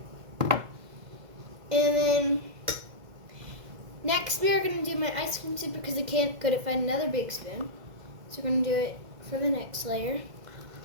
And then next we are going to do my ice cream soup because I couldn't find another big spoon. So we're going to do it for the next layer.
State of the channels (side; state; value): left; late; 2.1 ms